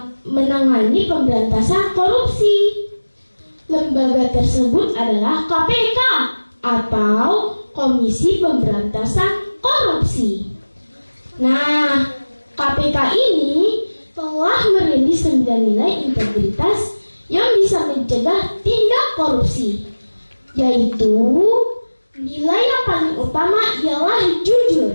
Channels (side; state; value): both; inverted; correlation -1.00